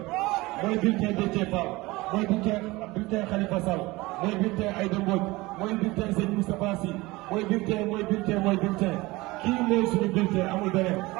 mooy bulletin Déthié Fall mooy bulletin Khalifa Sall mooy bulletin Aïda Mbodj mooy bulletin Sëñ Moustapha Sy mooy bulletin kii mooy suñu bulletin amul beneen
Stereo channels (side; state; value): left; quieter; 21.1 dB